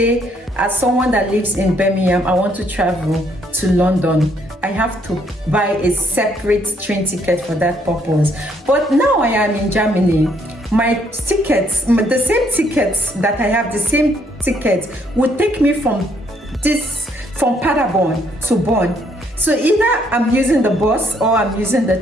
as someone that lives in Birmingham, I want to travel to London, I have to buy a separate train ticket for that purpose. But now I am in Germany, my tickets, the same tickets that I have, the same ticket would take me from Paderborn to Bonn. So either I'm using the bus or I'm using the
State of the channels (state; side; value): normal; both; correlation 0.69